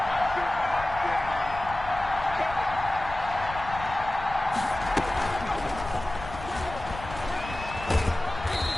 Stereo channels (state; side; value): noise; left; rumble, 12 dB below the sound